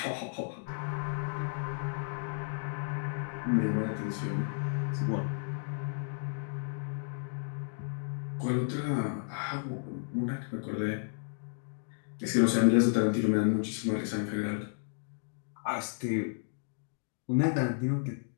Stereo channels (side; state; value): right; silent; digital silence